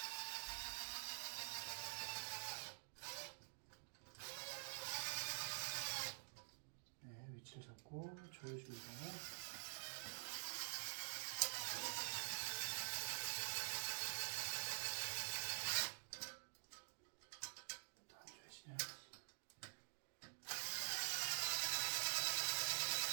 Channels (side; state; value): left; silent; digital silence